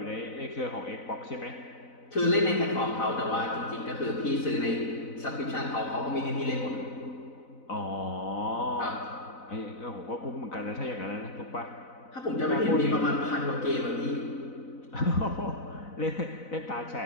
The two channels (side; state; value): right; late; 4.0 ms